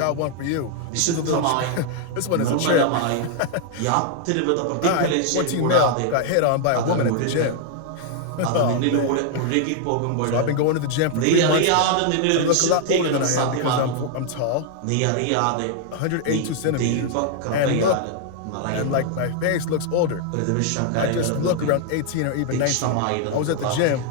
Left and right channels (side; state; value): both; different; correlation 0.00